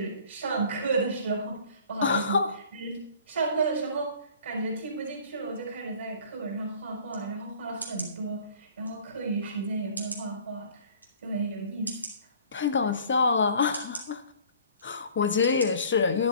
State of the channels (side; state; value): both; inverted; correlation -0.51